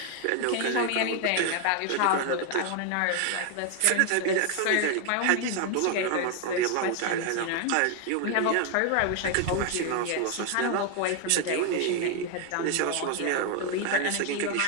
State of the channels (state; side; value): different; both; correlation 0.00